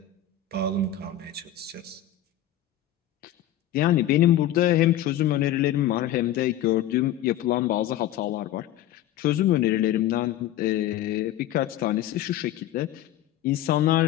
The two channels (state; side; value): quieter; right; 11.6 dB